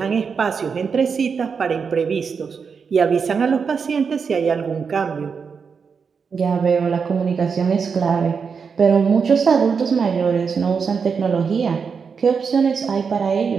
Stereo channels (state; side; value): quieter; left; 5.8 dB